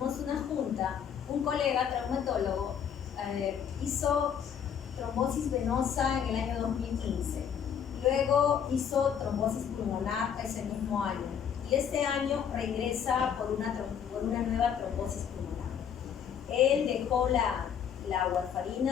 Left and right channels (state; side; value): quieter; right; 8.2 dB